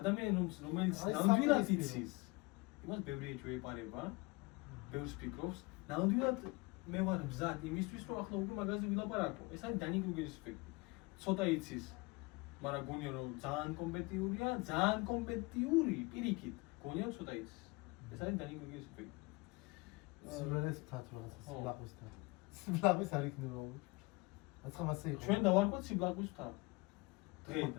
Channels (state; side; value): quieter; right; 25.5 dB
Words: რომელიც ნამდვილად იცის, იმას ბევრი ეჭვი ეპარება, ბევრს ფიქრობს, ნამდვილად მე ვარ მზად იმისთვის, რომ ახლა უკვე მაგაზე ვილაპარაკო. ეს არის Dunning-Kruger-ის ეფექტი. ცოტა იცის, მაგრამ გონია რომ ძალიან კომპეტიურია, ძალიან კომპეტიური პირიქით, გონია რომ ცოტა იცის. ეს არის Dunning-Kruger-ის ეფექტი. სულელეს მთათ რაღაცა სიბლაყვის მთა. სიბლაყვის არ იქნება. აცხა მასე იყო. ჩვენ დავარქვათ სიბლაყვის მთა.